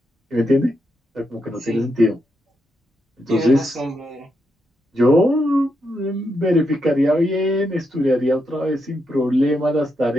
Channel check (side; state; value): both; normal; correlation 0.82